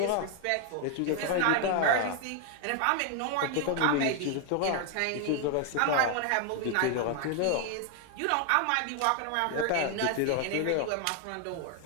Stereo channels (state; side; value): different; both; correlation 0.00